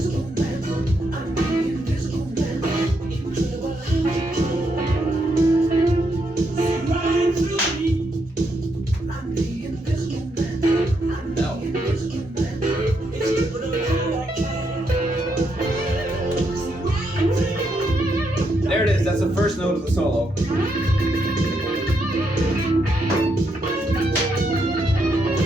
There it is, that's the first note of the solo.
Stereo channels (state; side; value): normal; both; correlation 0.79